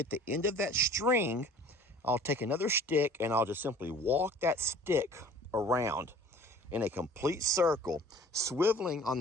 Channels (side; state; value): both; normal; correlation 0.48